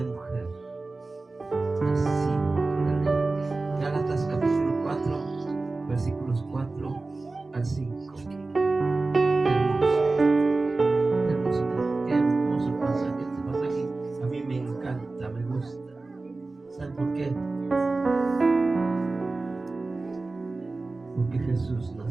mujer, nacido por la ley. Gálatas capítulo 4, versículos 4 al 5. Qué hermoso pasaje. Este pasaje a mí me encanta, me gusta. ¿Saben por qué? porque Jesús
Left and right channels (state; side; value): quieter; left; 3.4 dB